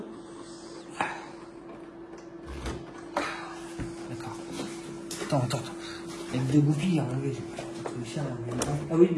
D'accord. Attends. Avec 2 goupilles à enlever. Ah oui,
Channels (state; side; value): identical; both; correlation 1.00